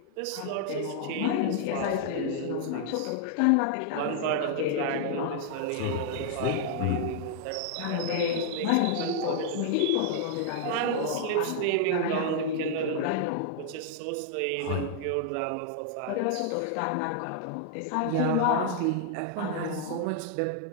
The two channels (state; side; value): different; both; correlation 0.00